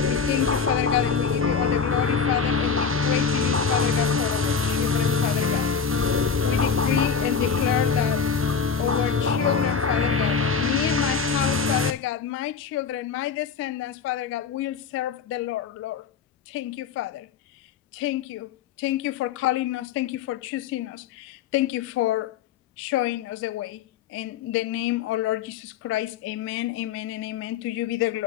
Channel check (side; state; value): right; quieter; 6.2 dB